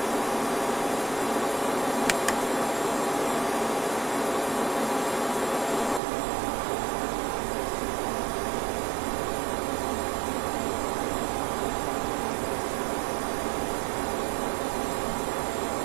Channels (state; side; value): drops out; left; at 6.0 s